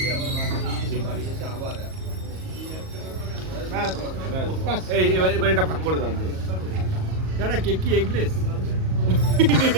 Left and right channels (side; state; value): left; late; 38 ms